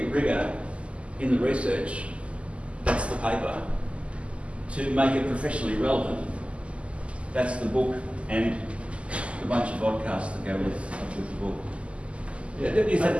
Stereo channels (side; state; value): left; late; 0.057 ms